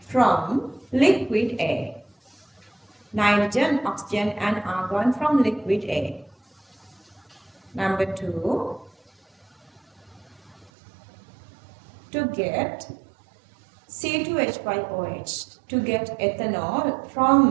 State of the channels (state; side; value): drops out; left; at 10.7 s